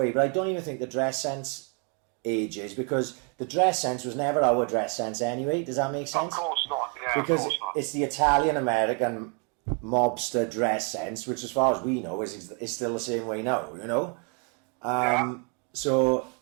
but I don't even think the dress sense ages because the dress sense was never our dress sense anyway. Does that make sense? Of course not. Yeah, because of course not. It's the Italian American mobster dress sense, which as far as we know is still the same way now, you know? So,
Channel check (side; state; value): left; quieter; 37.3 dB